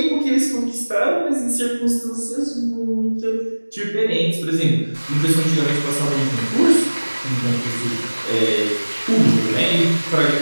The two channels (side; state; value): both; inverted; correlation -1.00